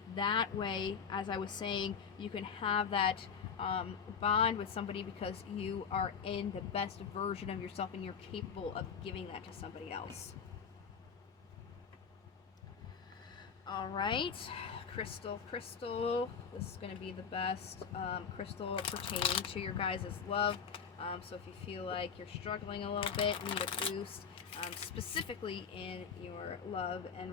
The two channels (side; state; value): right; quieter; 6.5 dB